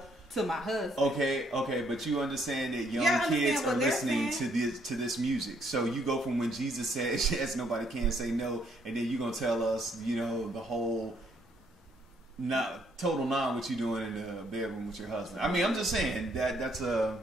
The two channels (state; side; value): normal; both; correlation 0.69